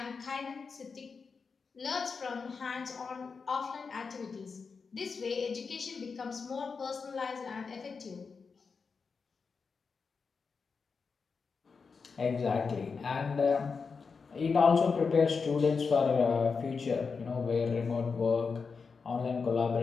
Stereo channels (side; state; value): right; quieter; 5.1 dB